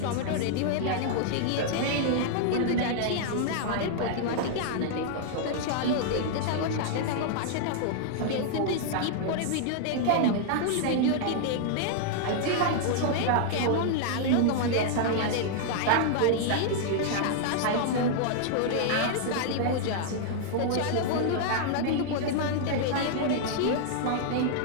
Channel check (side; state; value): both; different; correlation -0.01